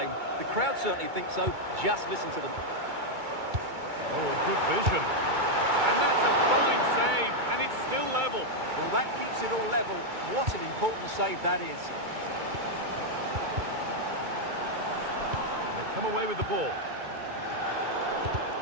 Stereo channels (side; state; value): left; late; 2.3 ms